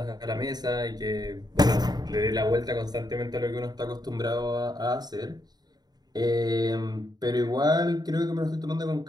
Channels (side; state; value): left; late; 0.20 ms